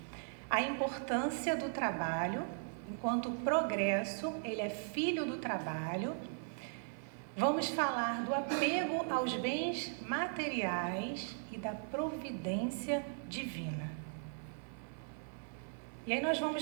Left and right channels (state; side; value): silent; left; 52 dB below the other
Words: A importância do trabalho, enquanto o progresso, ele é filho do trabalho. Vamos falar do apego aos bens materiais e da providência divina. E aí nós